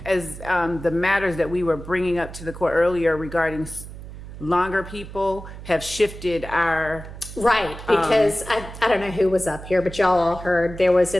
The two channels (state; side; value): noise; right; hum, 13 dB below the sound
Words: the matters that we were bringing up to the court earlier regarding longer people have shifted our. Right, because I don't know who was up here, but y'all all heard there was